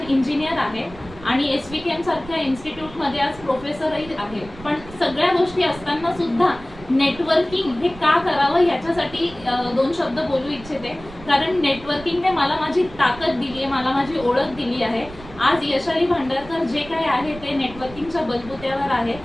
इंजिनियर आहे आणि SVKM सारख्या इन्स्टिट्यूटमध्ये आज प्रोफेसरही आहे. पण सगळ्या गोष्टी असताना सुद्धा नेटवर्किंग हे का करावं ह्याच्यासाठी दोन शब्द बोलू इच्छिते. कारण नेटवर्किंगने मला माझी ताकद दिली आहे, मला माझी ओळख दिली आहे. आज यशाली भांडारकर जे काय आहे ते नेटवर्किंगच्या बलबुत्यावर आहे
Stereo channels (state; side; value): noise; right; rumble, 17 dB below the sound